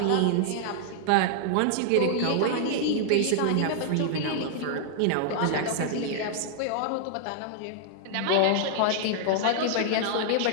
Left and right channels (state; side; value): different; both; correlation -0.01